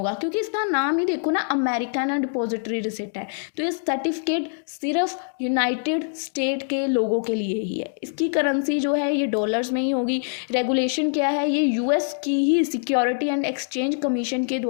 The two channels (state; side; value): silent; right; digital silence